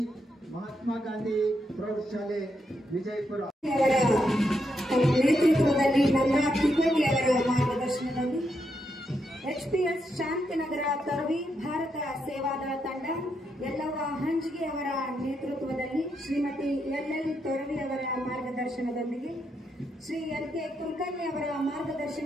ಮಹಾತ್ಮ ಗಾಂಧಿ ಪ್ರೌಢಶಾಲೆ ವಿಜಯಪುರ ನೇತೃತ್ವದಲ್ಲಿ ನವರಾಜ್ ತಿಕೋಟಿ ಅವರ ಮಾರ್ಗದರ್ಶನದಲ್ಲಿ HPS ಶಾಂತಿನಗರ ತರವಿ ಭಾರತ ಸೇವಾದಳ ತಂಡ, ಯಲ್ಲವ್ವ ಹಂಜಿಗೆ ಅವರ ನೇತೃತ್ವದಲ್ಲಿ ಶ್ರೀಮತಿ LL ತೊರವಿ ಅವರ ಮಾರ್ಗದರ್ಶನದೊಂದಿಗೆ ಶ್ರೀ LK ಕುಲಕರ್ಣಿ ಅವರ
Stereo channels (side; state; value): both; normal; correlation 0.81